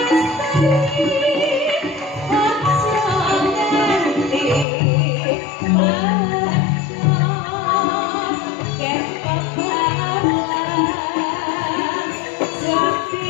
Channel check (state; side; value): drops out; right; at 4.7 s